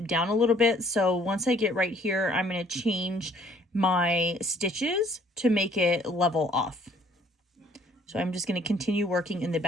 down a little bit. So once I get right here, I'm going to change my stitches to make it level off. So I'm just going to continue working in the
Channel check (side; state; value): both; normal; correlation 0.60